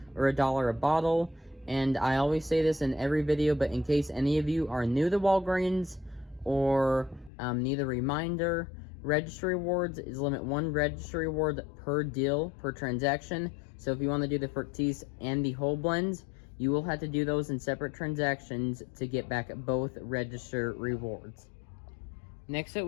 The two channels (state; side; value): drops out; right; at 7.3 s